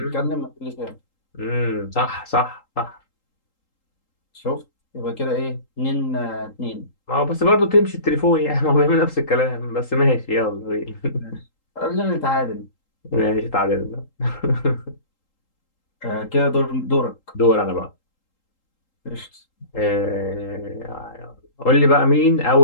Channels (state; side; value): late; right; 3.8 ms